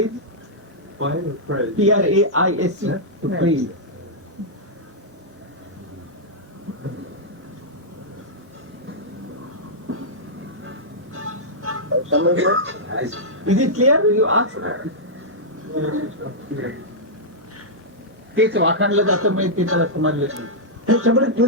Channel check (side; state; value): both; normal; correlation -0.09